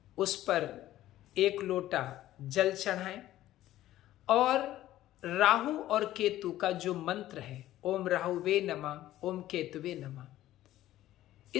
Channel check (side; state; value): right; quieter; 14.2 dB